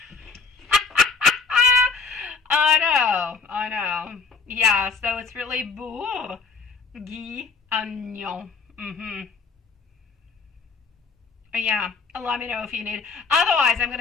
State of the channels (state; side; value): quieter; right; 4.9 dB